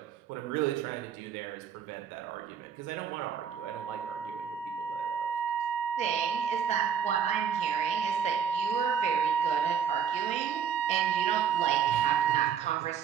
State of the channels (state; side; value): quieter; left; 7.6 dB